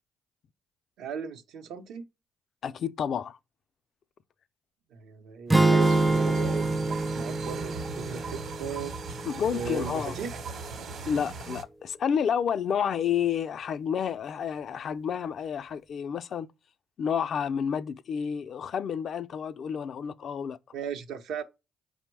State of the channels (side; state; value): both; normal; correlation 0.76